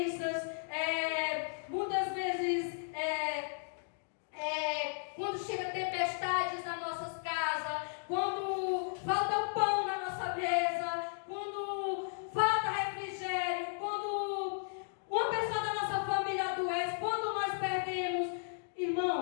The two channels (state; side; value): silent; right; digital silence